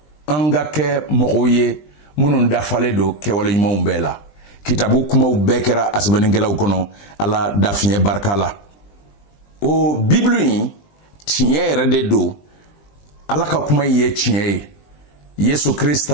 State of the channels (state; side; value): late; right; 20 ms